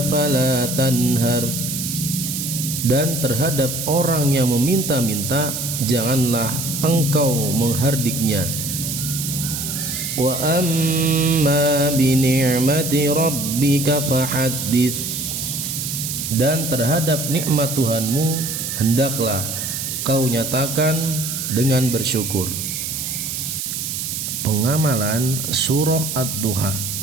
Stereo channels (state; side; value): noise; right; hiss, 4 dB below the sound